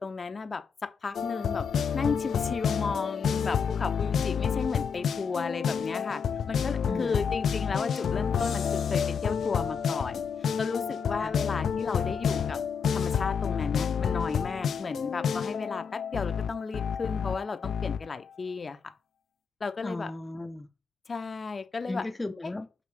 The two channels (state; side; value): quieter; right; 6.1 dB